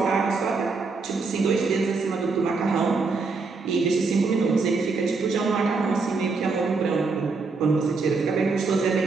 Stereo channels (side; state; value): left; quieter; 4.3 dB